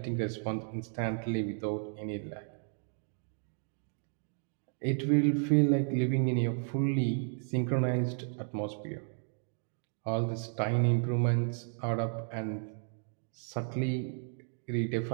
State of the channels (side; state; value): left; silent; 56 dB below the other